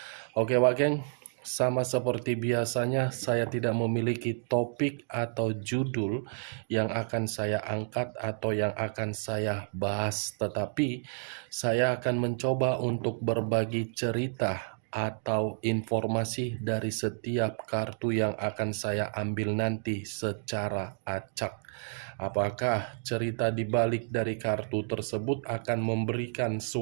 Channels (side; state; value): left; silent; digital silence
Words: Oke Wak Geng, sama seperti biasanya saya tidak memiliki topik atau judul yang akan saya angkat atau yang akan saya bahas, tetapi saya akan mencoba untuk berbagi cerita atau informasi dari setiap kartu yang akan saya ambil nanti secara acak. Apakah cerita di balik dari kartu tersebut akan memberikan